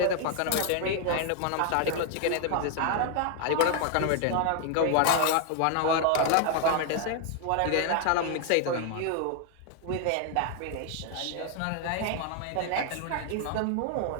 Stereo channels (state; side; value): different; both; correlation 0.00